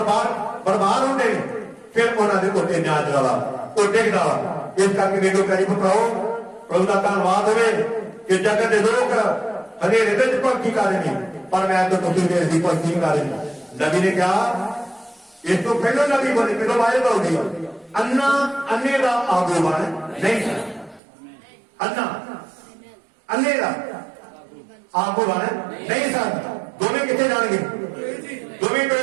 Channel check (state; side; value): drops out; left; at 21.0 s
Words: ਬਰਬਾਦ ਹੁੰਦੇ ਨੇ ਫਿਰ ਉਹਨਾਂ ਦੇ ਉੱਤੇ ਨਿਆਜ ਵਾਲਾ ਉਹ ਡਿੱਗਦਾ ਵਾ ਇਸ ਕਰਕੇ ਵੇਖੋ ਕਰੀ ਭਰਾਓ ਪ੍ਰਭੂ ਦਾ ਧੰਨਵਾਦ ਹੋਵੇ ਕਿ ਜਗਤ ਦੇ ਲੋਕ ਹਨੇਰੇ ਵਿੱਚ ਭਗਤੀ ਕਰ ਰਹੇ ਨੇ ਪਰ ਮੈਂ ਤਾਂ ਤੁਸੀਂ ਦੇ ਦੀ ਭਗਤੀ ਕਰ ਰਹੇ ਨੇ ਨਬੀ ਨੇ ਕਿਹਾ ਇਸ ਤੋਂ ਪਹਿਲਾਂ ਨਬੀ ਬਣੇ ਪਹਿਲਾਂ ਵਾਇਦਾ ਹੋ ਗਈ ਅੰਨੇ ਦਾ ਆਗੂ ਬਣ ਨਹੀਂ ਅੰਨੇ ਦਾ ਆਗੂ ਬਣ ਨਹੀਂ ਸਨ ਦੋਵੇਂ ਕਿੱਥੇ ਜਾਣਗੇ ਦੋਵੇਂ